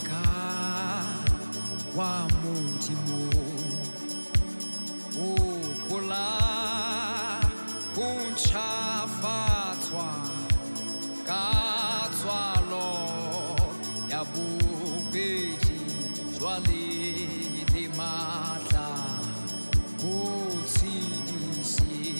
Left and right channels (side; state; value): both; inverted; correlation -1.00